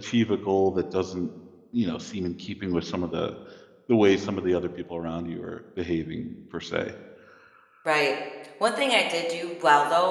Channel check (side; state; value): both; identical; correlation 1.00